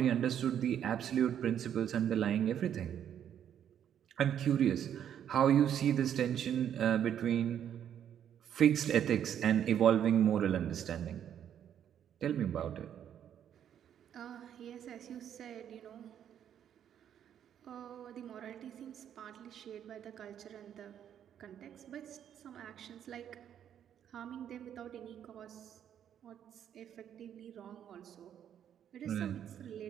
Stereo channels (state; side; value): quieter; left; 9.6 dB